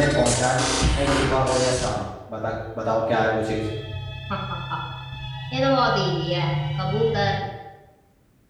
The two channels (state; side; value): identical; both; correlation 1.00